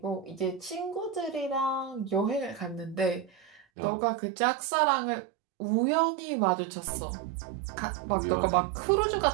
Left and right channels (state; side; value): drops out; left; at 3.7 s